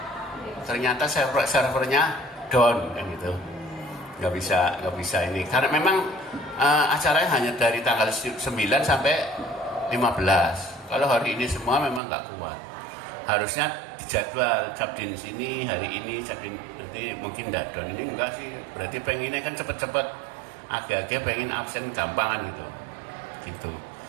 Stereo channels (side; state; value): left; drops out; at 12.0 s